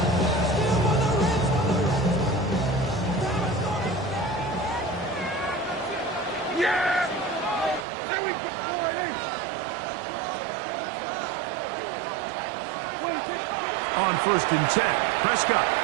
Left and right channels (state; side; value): drops out; left; at 7.9 s